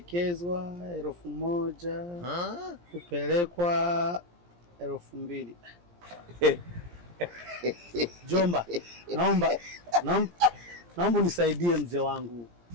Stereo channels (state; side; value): late; left; 17 ms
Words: 1000, kupelekwa 2000. Jomba, naomba unisaidie mzee wangu.